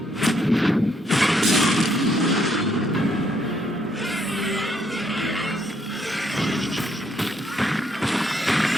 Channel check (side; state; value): both; normal; correlation 0.72